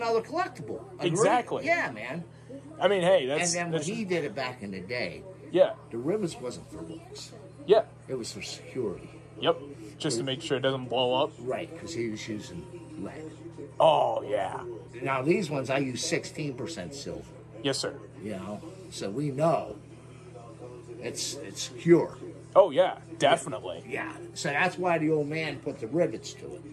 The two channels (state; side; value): identical; both; correlation 1.00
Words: collectible. Agree? Exactly. Yeah, man. I mean, hey, that's... And then when that's, he did it back in the day, yeah. the rivets wasn't for looks. Yeah. It was for security. Yep. Just to make sure it doesn't blow up. Right, because he was using lead. Oh, yeah. Now, these ones, I use 16% silver. Yes, sir. You know, so we know it's secure. Oh, yeah, definitely. Yeah, so that's why the old man put the rivets to